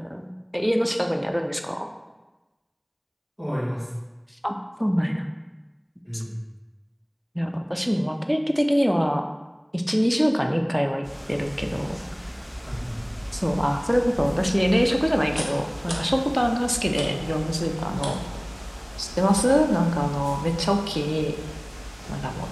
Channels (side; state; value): both; identical; correlation 1.00